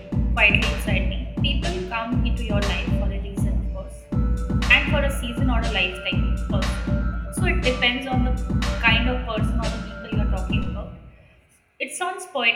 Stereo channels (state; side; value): identical; both; correlation 1.00